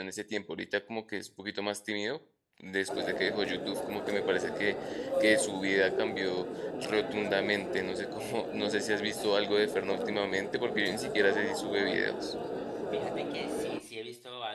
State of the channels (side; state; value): both; identical; correlation 1.00